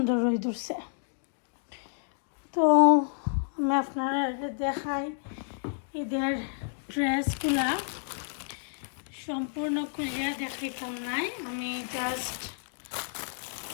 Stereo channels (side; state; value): right; silent; digital silence